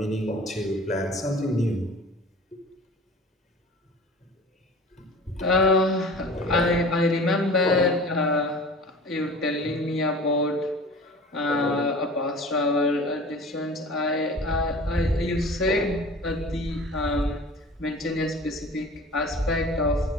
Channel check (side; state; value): both; normal; correlation 0.41